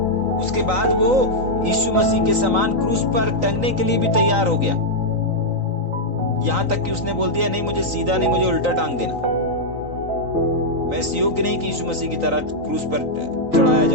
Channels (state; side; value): late; left; 3.9 ms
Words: उसके बाद वो यीशु मसीह के समान क्रूस पर टंगने के लिए भी तैयार हो गया। यहां तक कि उसने बोल दिया, नहीं मुझे सीधा नहीं, मुझे उल्टा टांग देना, मैं इस योग्य नहीं कि यीशु मसीह की तरह क्रूस पर चढ़ाया